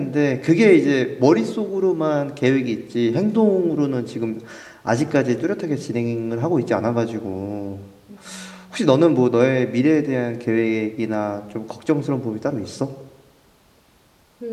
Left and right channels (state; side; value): identical; both; correlation 1.00